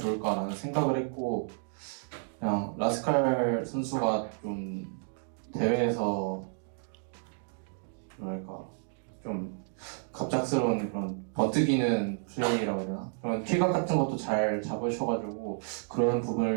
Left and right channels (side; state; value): left; silent; 57 dB below the other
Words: 생각을 했고 그냥 라스칼 선수가 좀 대회에서 뭐랄까 좀 갑작스러운 그런 버티기는 플레이라고 해야 되나? 그런 킬각 같은 것도 잘 잡으셔가지고 그런